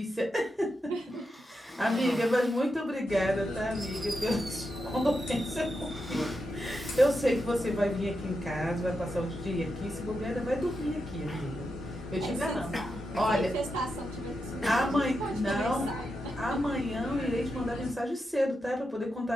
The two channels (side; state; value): both; normal; correlation 0.87